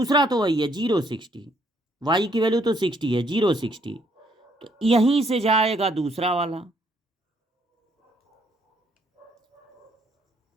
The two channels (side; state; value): both; normal; correlation 0.69